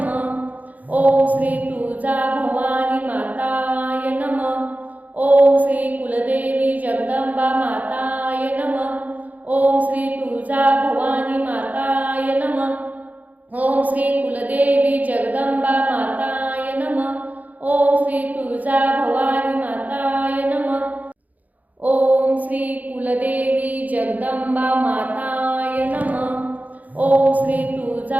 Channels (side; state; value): left; late; 0.078 ms